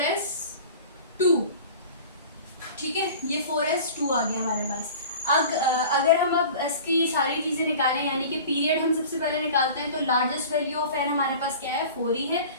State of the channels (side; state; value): both; inverted; correlation -0.40